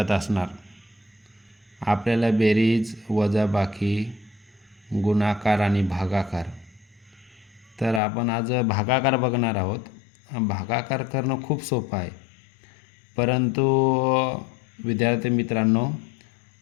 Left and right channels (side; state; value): right; drops out; at 8.0 s